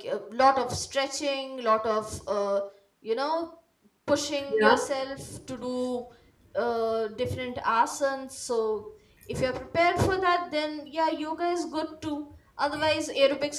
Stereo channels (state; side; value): identical; both; correlation 1.00